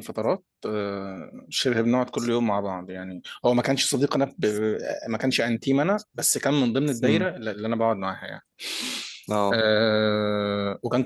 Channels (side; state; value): both; identical; correlation 1.00